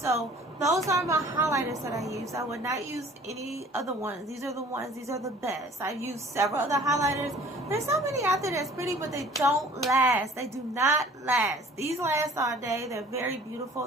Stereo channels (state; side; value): normal; both; correlation 0.50